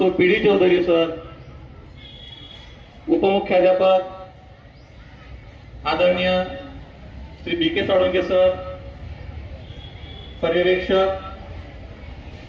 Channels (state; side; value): identical; both; correlation 1.00